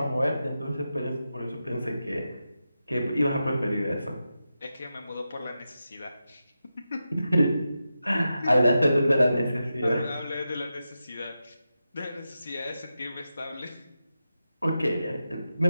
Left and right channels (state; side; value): inverted; both; correlation -0.90